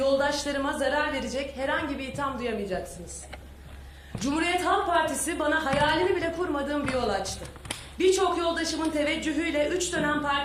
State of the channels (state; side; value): identical; both; correlation 1.00